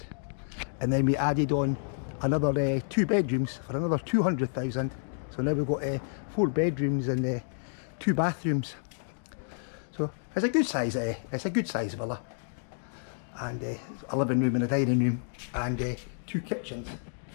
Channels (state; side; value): silent; right; digital silence